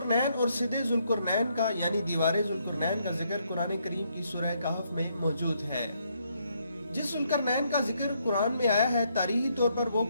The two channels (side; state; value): both; inverted; correlation -0.73